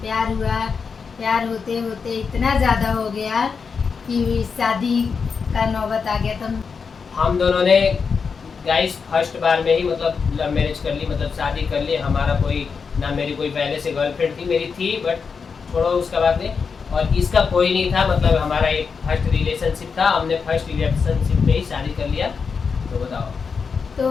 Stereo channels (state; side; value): quieter; right; 5.6 dB